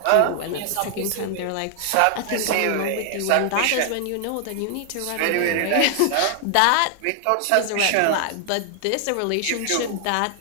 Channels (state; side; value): different; both; correlation 0.00